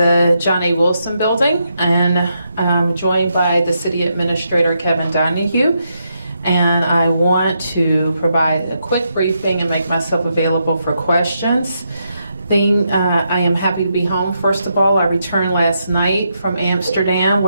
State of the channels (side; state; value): both; inverted; correlation -0.81